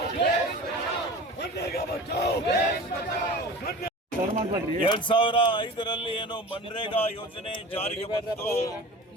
मनरेगा बचाओ 2005ರಲ್ಲಿ ಏನು ಮನ್ರೇಗಾ ಯೋಜನೆ ಜಾರಿಗೆ ಬಂತು.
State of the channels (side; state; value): both; normal; correlation 0.37